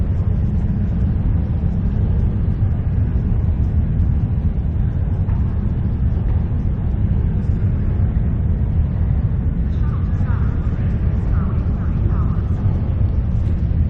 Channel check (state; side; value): identical; both; correlation 1.00